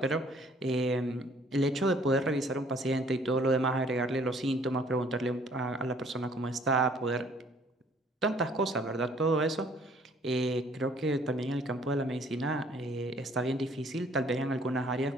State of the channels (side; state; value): both; normal; correlation 0.59